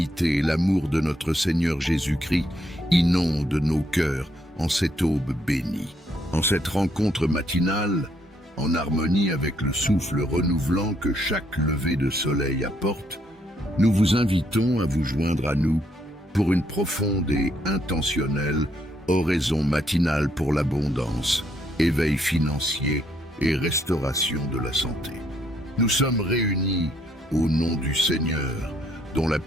et l'amour de notre Seigneur Jésus-Christ inondent nos cœurs en cette aube bénie. En cette rencontre matinale, en harmonie avec le souffle renouvelant que chaque lever de soleil apporte, nous vous invitons à vous joindre à nous pour une profonde et intentionnelle oraison matinale pour l'abondance, éveil financier et restauration de la santé. Nous sommes réunis au nom du Seigneur, dont la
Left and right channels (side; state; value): both; normal; correlation 0.72